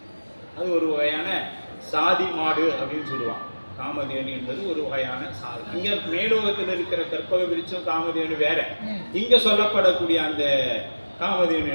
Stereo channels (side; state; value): both; inverted; correlation -1.00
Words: அது ஒரு வகையான சாதி மாடு அப்படின்னு சொல்லுவாங்க. காமதேனு என்பது ஒரு வகையான சாதி. இங்க மேலோகத்தில் இருக்கிற கற்பக விருட்சம் காமதேனு வேற. இங்க சொல்லப்படக்கூடிய அந்த காமதேனு